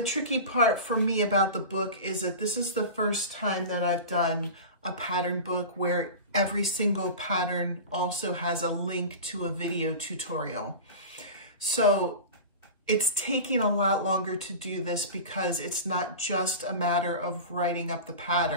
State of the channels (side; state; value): both; inverted; correlation -0.31